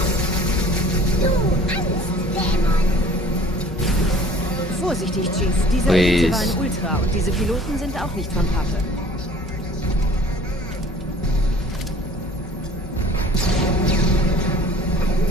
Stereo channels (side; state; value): both; normal; correlation 0.49